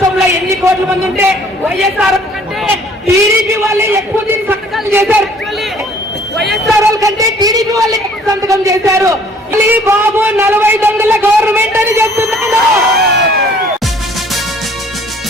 ఎన్ని కోట్ల మంది ఉంటే వైఎస్ఆర్ కంటే టీడీపీ వాళ్ళే ఎక్కువ సంతకాలు చేశారు. వైఎస్ఆర్ కంటే టీడీపీ వాళ్ళే ఎక్కువ సంతకం చేశారు. బాబు 40 దొంగల గవర్నమెంట్ అని చెప్తున్నాను.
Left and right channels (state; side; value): normal; both; correlation 0.56